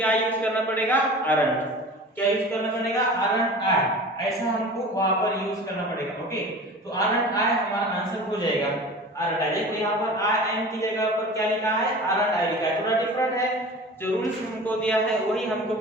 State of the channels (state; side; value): normal; both; correlation 0.38